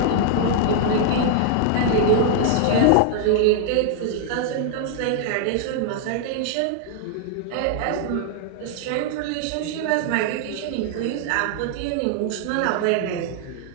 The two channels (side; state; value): both; different; correlation -0.01